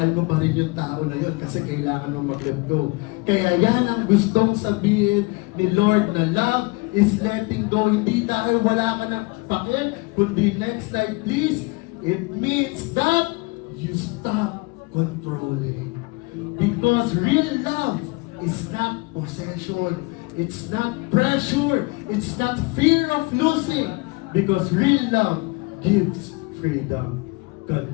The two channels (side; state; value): right; quieter; 26.1 dB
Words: mo pa rin yung tao na yun kasi kailangan mo mag-let go. Kaya yan ang gustong sabihin ni Lord na love is letting go. Hindi dahil wala ka ng pakil, kundi next slide please, it means that you stop controlling. Because real love is not possession. It's not pressure. It's not fear of losing. Because real love gives freedom.